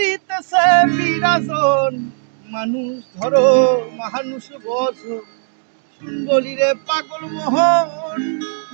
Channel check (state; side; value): silent; left; digital silence